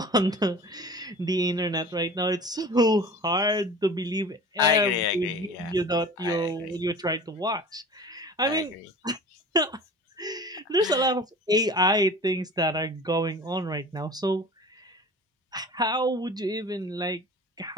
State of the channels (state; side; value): normal; both; correlation 0.39